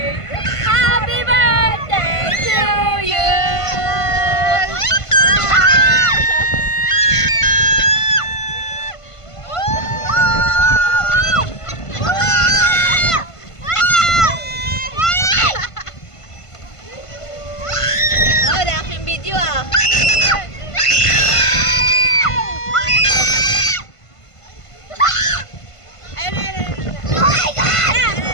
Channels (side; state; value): right; late; 1.5 ms